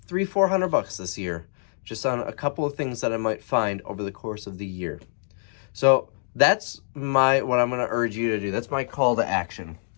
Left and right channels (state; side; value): silent; right; digital silence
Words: this year, just on a couple of things that I might find over the course of the year. So that's what I'm going to urge you to do. That's my call to action.